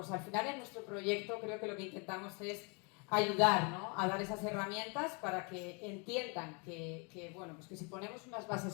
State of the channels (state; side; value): quieter; right; 33.3 dB